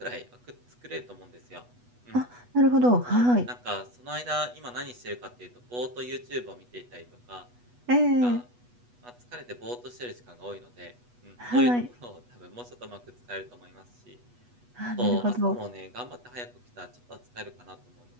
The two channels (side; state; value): left; late; 8.2 ms